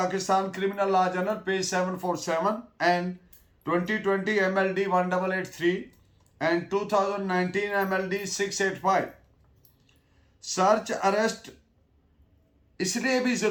criminal law journal page 747 and 2020 MLD 1883 and 2019 MLD 685। Search arrest इसलिए भी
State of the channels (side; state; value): both; identical; correlation 1.00